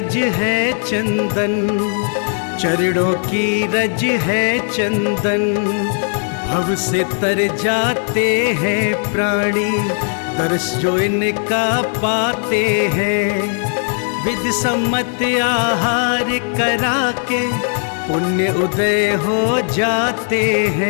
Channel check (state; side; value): silent; right; 55 dB below the other